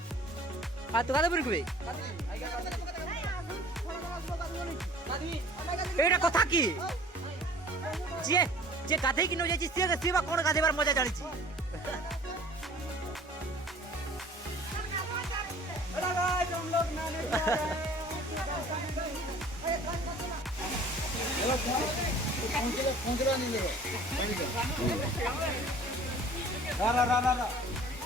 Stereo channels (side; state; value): both; normal; correlation 0.48